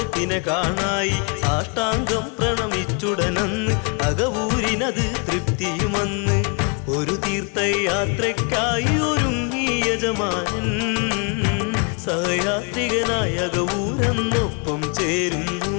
കാണായി. സാഷ്ടാംഗം പ്രണമിച്ചുടനന്ന് അകവൂരിനത് തൃപ്തിയുമന്ന്. ഒരു തീർത്ഥയാത്രയ്ക്കായി ഒരുങ്ങി യജമാനൻ സഹയാത്രികനായ അകവൂരെന്നൊപ്പം ചേരുന്നു.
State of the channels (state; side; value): quieter; right; 36.2 dB